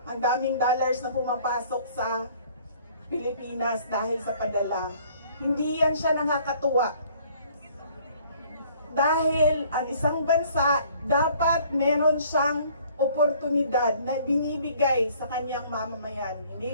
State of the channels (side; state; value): both; inverted; correlation -0.57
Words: ang daming dollars na pumapasok sa Pilipinas dahil sa padala. Hindi yan siya nakakatuwa. Dahil ang isang bansa dapat meron siyang oportunidad na binibigay sa kanyang mamamayan. Hindi